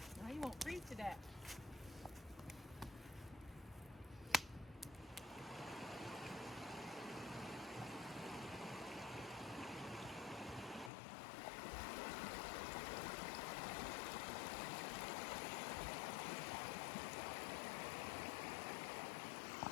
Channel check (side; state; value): right; drops out; at 10.9 s